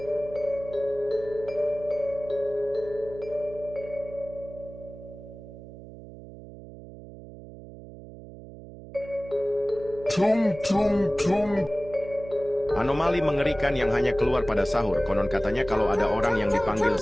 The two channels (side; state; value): right; noise; hum, 15 dB below the sound